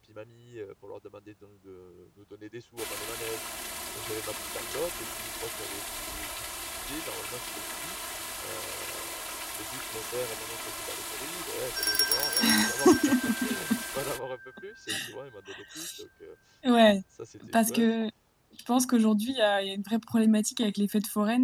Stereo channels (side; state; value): both; identical; correlation 1.00